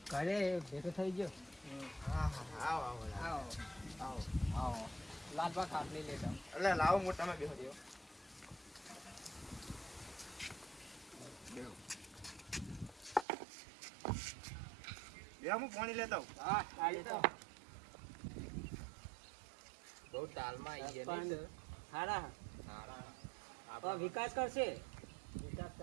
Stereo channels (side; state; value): left; drops out; at 13.2 s